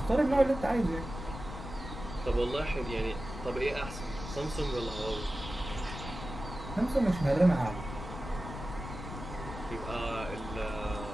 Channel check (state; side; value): noise; left; rumble, 9 dB below the sound